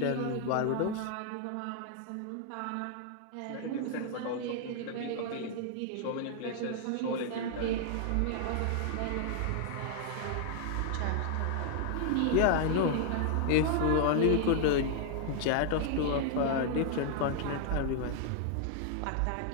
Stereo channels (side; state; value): both; different; correlation 0.00